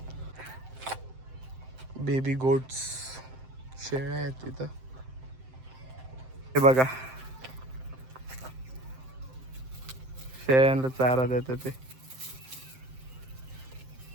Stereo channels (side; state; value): left; late; 7.7 ms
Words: बेबी गोट्स, शेळ्या आहेत तिथं. हे बघा शेळ्यांना चारा देतात ते.